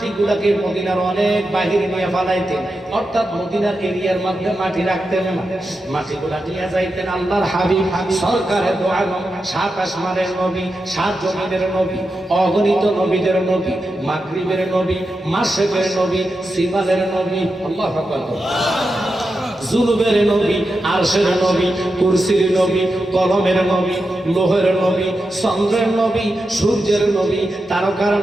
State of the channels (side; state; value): both; normal; correlation 0.89